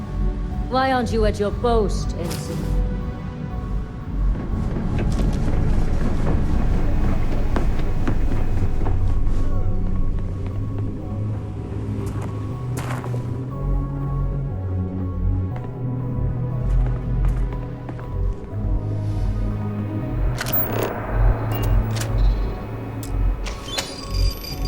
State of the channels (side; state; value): both; identical; correlation 1.00